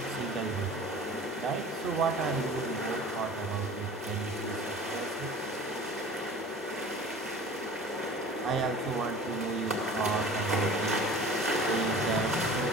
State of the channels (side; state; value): both; normal; correlation 0.42